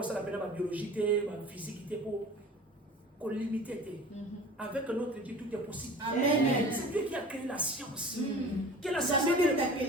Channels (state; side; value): normal; both; correlation 0.41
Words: pena ba biologie te ba physique te po qu'on limité. Avec notre Dieu, tout est possible. C'est Dieu qui a créé la science. Que la science